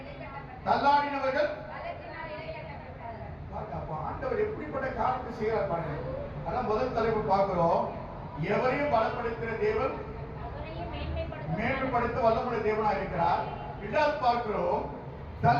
அப்ப ஆண்டவர் எப்படிப்பட்ட காரியத்தை செய்கிறார் பாருங்க. அதான் முதல் தலைப்பு பார்க்கிறோம். எவரையும் பலப்படுத்துகிற தேவன் மேன்மைப்படுத்த வல்லமுள்ள தேவனா இருக்கிறார். இரண்டாவது பார்க்கிறோம்,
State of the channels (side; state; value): both; identical; correlation 1.00